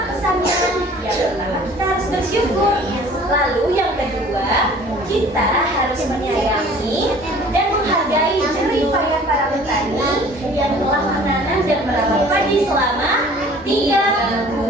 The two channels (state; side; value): normal; both; correlation 0.50